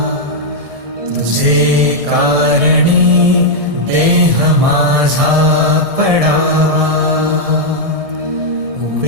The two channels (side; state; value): left; late; 1.7 ms